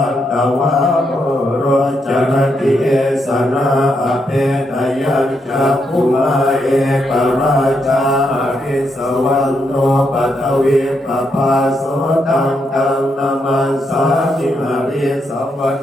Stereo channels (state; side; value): normal; both; correlation 0.80